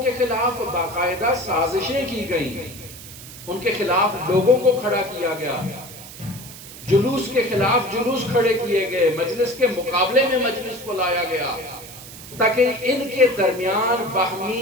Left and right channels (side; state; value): right; noise; hiss, 15 dB below the sound